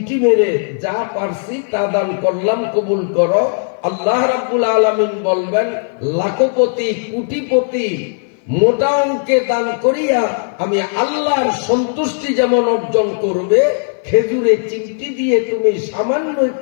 মেরে যা পারছি তা দান করলাম, কবুল করো। আল্লাহ রাব্বুল আলামিন বলবেন লাখপতি, কোটিপতি, মোটা অঙ্কে দান করিয়া আমি আল্লাহর সন্তুষ্টি যেমন অর্জন করবে, খেজুরে চিমটি দিয়ে তুমি সামান্য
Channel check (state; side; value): silent; right; 56 dB below the other